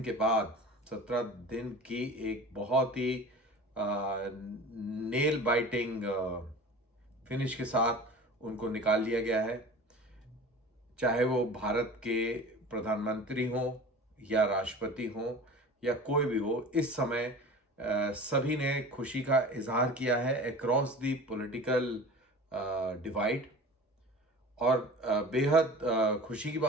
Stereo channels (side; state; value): both; normal; correlation 0.37